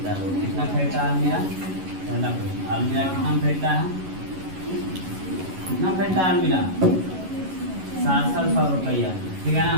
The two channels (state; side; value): late; left; 11 ms